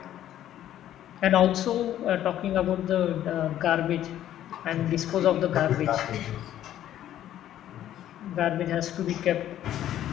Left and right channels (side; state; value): right; quieter; 11.9 dB